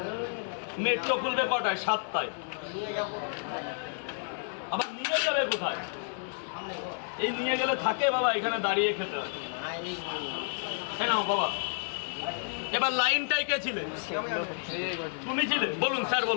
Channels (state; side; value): silent; right; 57 dB below the other